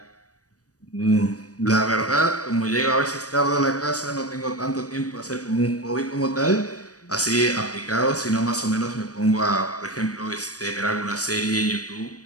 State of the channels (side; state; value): right; late; 0.67 ms